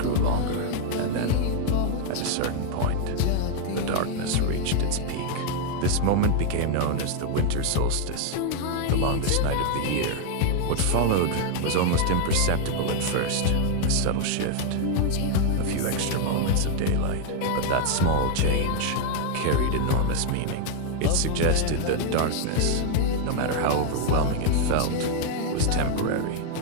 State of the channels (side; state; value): both; different; correlation 0.00